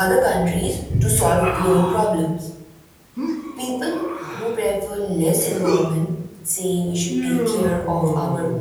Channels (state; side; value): identical; both; correlation 1.00